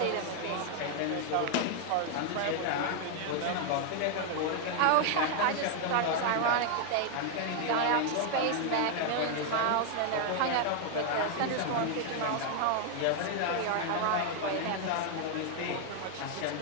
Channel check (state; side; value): different; both; correlation 0.00